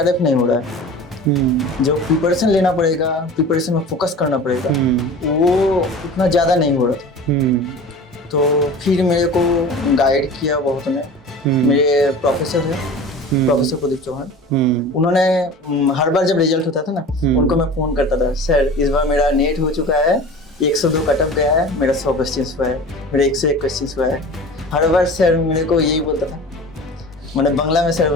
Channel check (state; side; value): normal; both; correlation 0.37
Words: नहीं हो रहा है, जो प्रिपरेशन लेना पड़ेगा, प्रिपरेशन में फोकस करना पड़ेगा, वो उतना ज़्यादा नहीं हो रहा था। तो फिर मेरे को गाइड किया बहुत ने, मेरे प्रोफेसर है प्रोफेसर प्रदीप चौहान, उन्होंने हर बार जब रिजल्ट होता था ना उनको मैं फ़ोन करता था, सर इस बार मेरा नेट हो चुका है, 102 कटअप गया है, मेरा 100 क्वेश्चन हुआ है, मेरा 101 क्वेश्चन हुआ है। हर बार सर मेरे को यही बोलता था, मैंने बांग्ला में सर